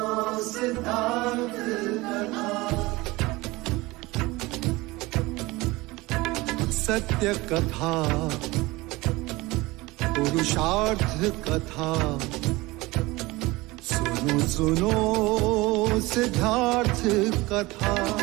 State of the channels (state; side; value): quieter; left; 21.3 dB